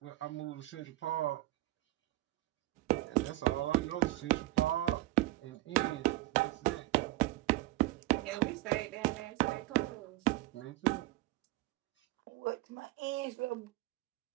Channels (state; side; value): quieter; left; 17.7 dB